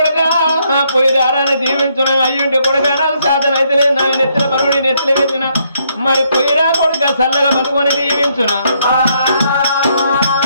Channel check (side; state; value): both; inverted; correlation -0.73